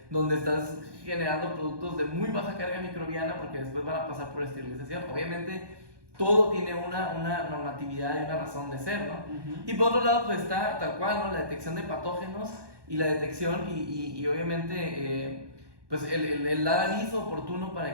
donde estás generando productos de muy baja carga microbiana porque después van a pasar por esterilización. Obviamente, todo tiene una normatividad y una razón de ser, ¿no? Y por otro lado, pues está tal cual, ¿no? La detección de patógenos y la detección y obviamente pues el dar aviso oportuno para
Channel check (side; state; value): left; late; 1.2 ms